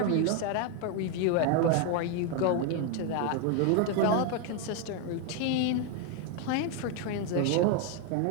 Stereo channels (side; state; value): both; different; correlation 0.01